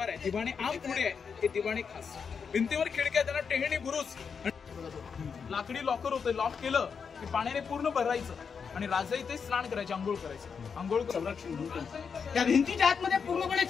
आहे, दिवाणी आम पुढे आहे, ते दिवाणी खास. भिंतीवर खिडक्या, त्यांना टेहणी बुरुज, लाकडी लॉकर होतं. लॉक केलं की पाण्याने पूर्ण भरायचं आणि राजा इथे स्नान करायचे, आंघोळ करायचं. आंघोळ संरक्षण त्या भिंतीच्या आतमध्ये पूर्णपणे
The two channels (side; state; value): right; quieter; 6.1 dB